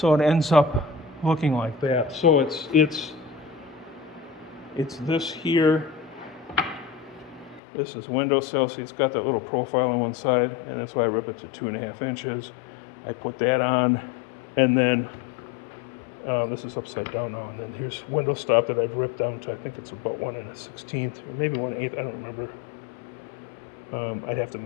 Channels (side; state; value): right; drops out; at 7.6 s